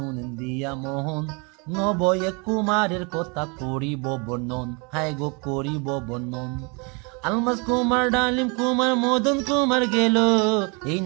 দিয়া মোহন, নবয়ে কুমারের কথা করিব বর্ণন, হায় গো করিব বর্ণন। আলমাস কুমার, ডালিম কুমার, মদন কুমার গেল, এই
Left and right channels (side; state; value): left; quieter; 31.7 dB